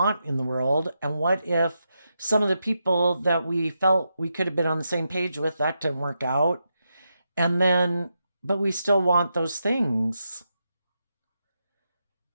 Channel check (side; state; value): both; inverted; correlation -0.85